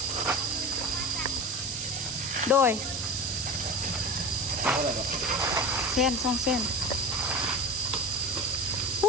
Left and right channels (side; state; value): right; noise; hiss, 4 dB below the sound